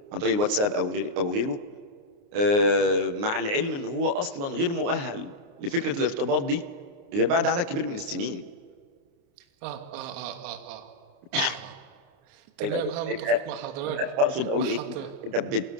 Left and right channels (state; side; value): late; left; 29 ms